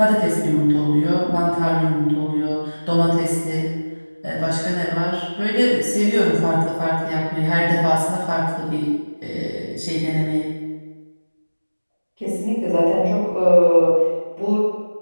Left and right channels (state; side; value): inverted; both; correlation -1.00